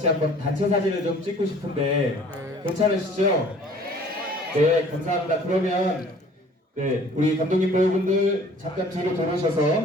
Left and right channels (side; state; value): both; normal; correlation 0.52